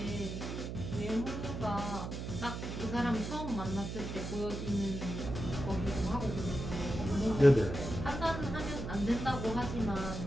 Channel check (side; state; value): right; noise; hum, 5 dB below the sound